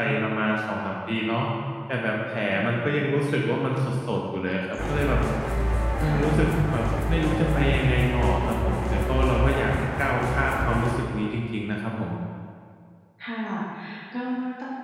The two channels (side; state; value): both; identical; correlation 1.00